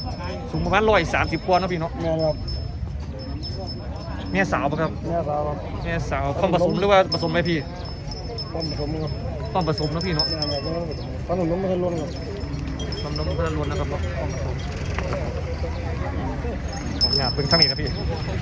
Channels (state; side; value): identical; both; correlation 1.00